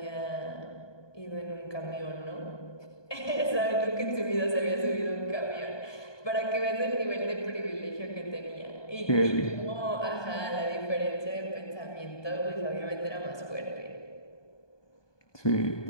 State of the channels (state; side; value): late; right; 1.2 ms